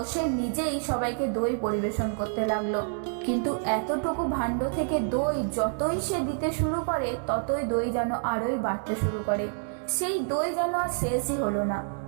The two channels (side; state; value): left; silent; digital silence